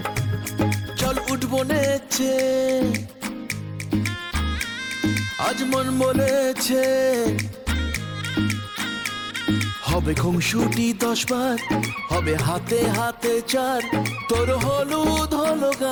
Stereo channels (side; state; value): both; identical; correlation 1.00